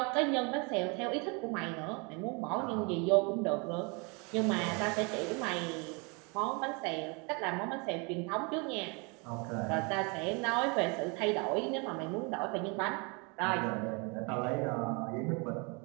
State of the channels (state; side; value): quieter; left; 31.3 dB